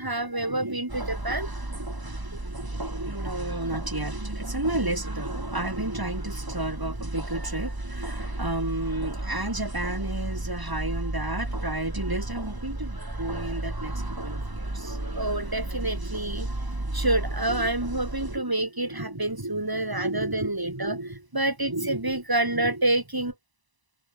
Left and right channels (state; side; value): late; left; 1.0 ms